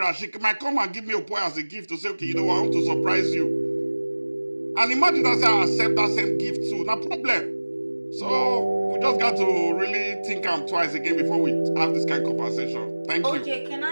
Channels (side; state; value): both; inverted; correlation -1.00